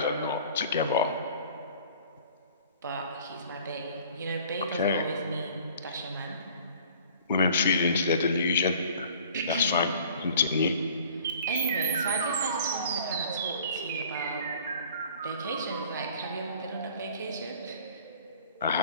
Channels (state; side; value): inverted; both; correlation -0.50